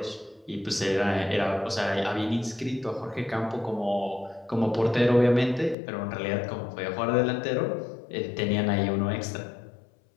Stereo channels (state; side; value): drops out; right; at 5.8 s